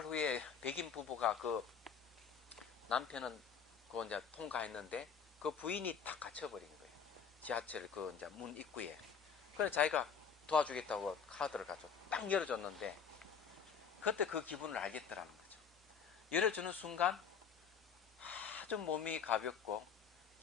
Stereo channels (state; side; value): quieter; right; 6.7 dB